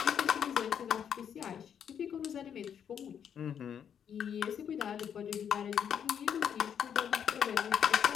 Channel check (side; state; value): right; quieter; 8.3 dB